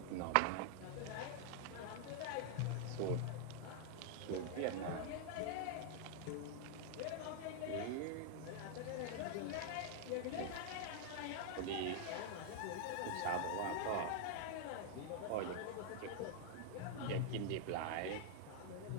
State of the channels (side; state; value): both; different; correlation 0.00